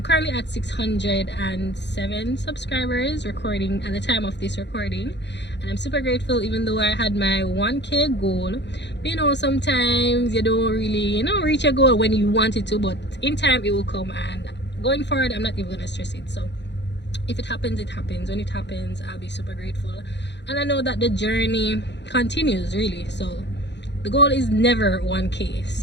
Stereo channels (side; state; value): right; late; 0.51 ms